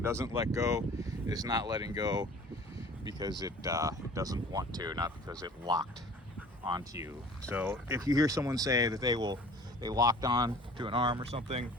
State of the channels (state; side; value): normal; both; correlation 0.46